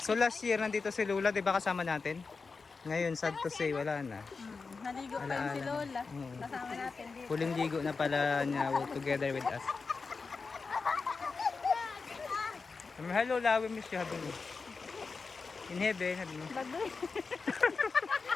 So last year nandito si Lola, 'di ba kasama natin? Ngayon sad to say wala na. Naligo pa yun si Lola. Kasama natin dito. Huling ligo na pala niya together with us. Hello Lola, we miss you habang in heaven, habi mo. Bagoy.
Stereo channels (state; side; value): quieter; right; 4.5 dB